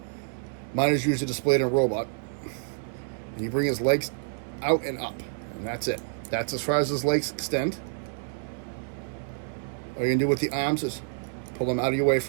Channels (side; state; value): left; silent; digital silence